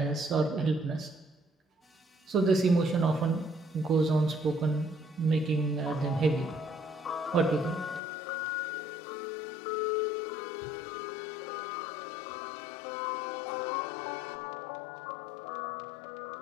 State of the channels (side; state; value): right; drops out; at 8.0 s